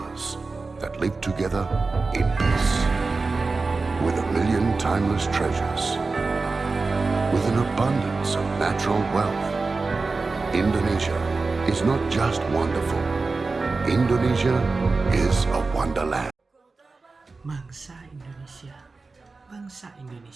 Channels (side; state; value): left; quieter; 3.9 dB